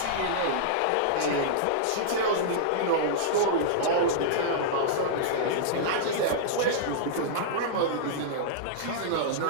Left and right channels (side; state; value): both; different; correlation -0.02